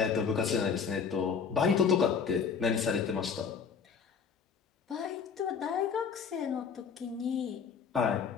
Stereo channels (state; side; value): quieter; right; 6.3 dB